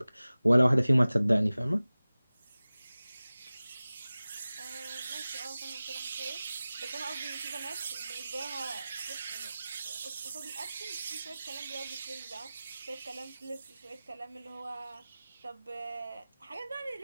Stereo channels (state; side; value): inverted; both; correlation -0.97